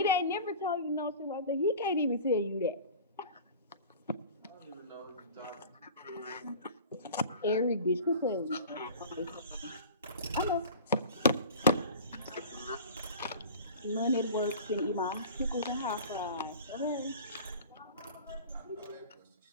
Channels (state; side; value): inverted; both; correlation -0.38